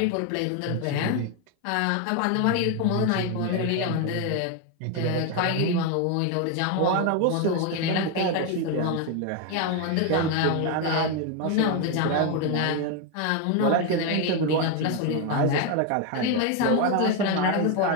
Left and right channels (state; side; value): different; both; correlation 0.02